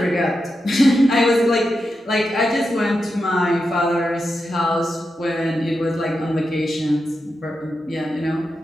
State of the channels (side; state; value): both; normal; correlation 0.88